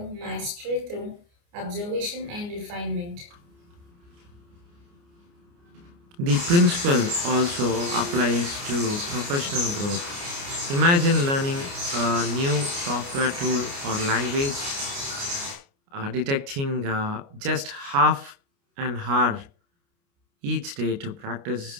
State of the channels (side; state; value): left; late; 29 ms